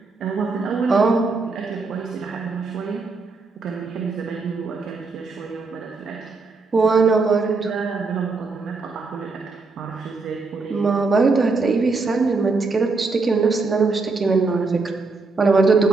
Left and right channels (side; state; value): left; quieter; 4.0 dB